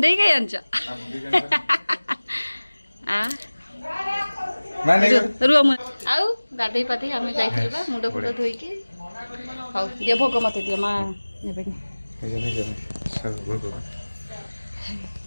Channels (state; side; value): inverted; both; correlation -1.00